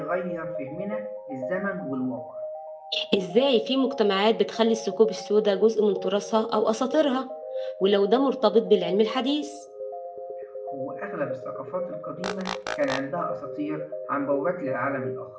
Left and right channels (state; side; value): identical; both; correlation 1.00